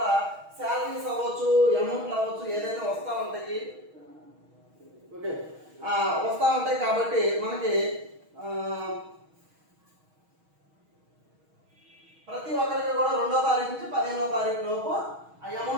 శాలరీస్ అవ్వచ్చు, అమౌంట్లు అవ్వచ్చు, ఏదైనా వస్తూ ఉంటాయి. ఓకే, వస్తూ ఉంటాయి కాబట్టి మనకి ప్రతి ఒక్కరికి కూడా 2వ తారీఖు నుంచి 15వ తారీఖు లోపు ఆ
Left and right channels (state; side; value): late; left; 6.3 ms